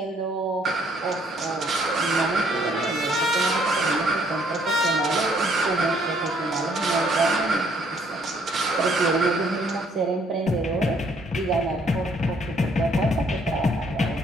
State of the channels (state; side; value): normal; both; correlation 0.65